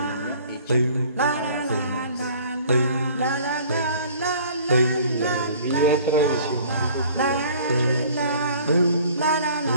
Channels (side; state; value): both; inverted; correlation -0.51